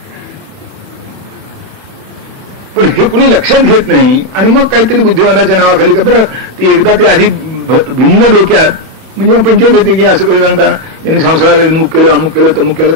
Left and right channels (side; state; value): left; late; 31 ms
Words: पण हे कुणी लक्षात घेत नाही आणि मग काहीतरी बुद्धिवादाच्या नावाखाली का बरं ते एकदा ते आधी भिन्न डोक्यात म्हणजे मग पंचायत येते की असं कधी सांगता यांनी संसाराला विमुख केलं, अमुक केलं, तमुक केलं,